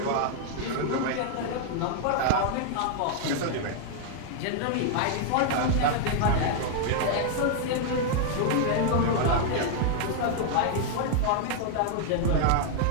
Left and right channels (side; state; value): both; different; correlation 0.00